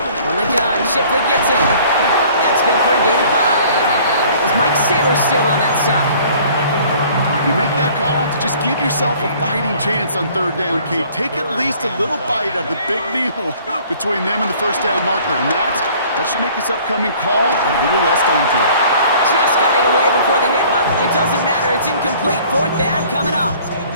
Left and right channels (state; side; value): inverted; both; correlation -0.53